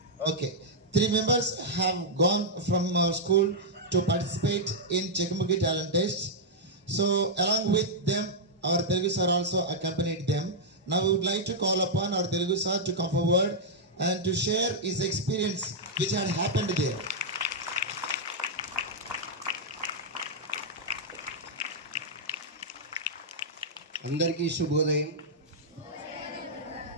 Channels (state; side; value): normal; both; correlation -0.07